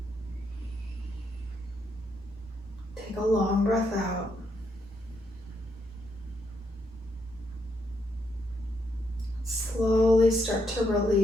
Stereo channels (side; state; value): both; normal; correlation 0.77